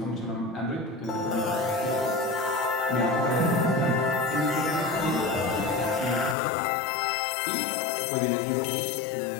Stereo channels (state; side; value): drops out; right; at 6.4 s